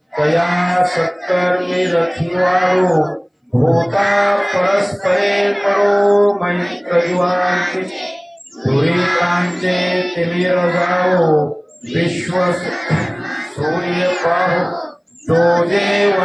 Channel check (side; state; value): both; identical; correlation 1.00